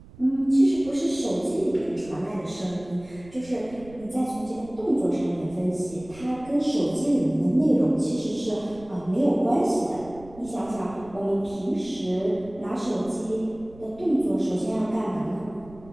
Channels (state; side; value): noise; right; rumble, 21 dB below the sound